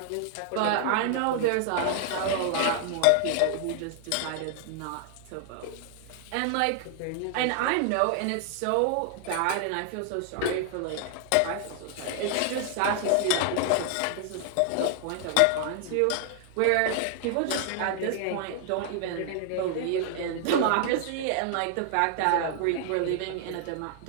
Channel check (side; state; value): both; different; correlation 0.00